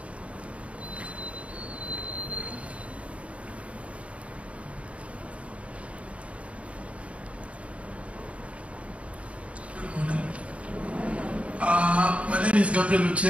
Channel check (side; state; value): left; late; 0.064 ms